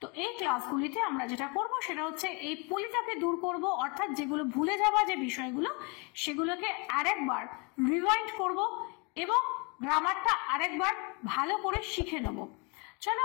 তো এই ক্লাসগুলিতে আমরা যেটা করব সেটা হচ্ছে এই পলিটাকে দূর করব, অর্থাৎ যেগুলো ভুলে যাওয়া যে বিষয়গুলো সেগুলোকে আরেকবার রিভাইন্ড করব এবং গ্রামারটা আরেকবার ভালো করে শিখে নেব। চলো,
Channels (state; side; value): quieter; right; 30.1 dB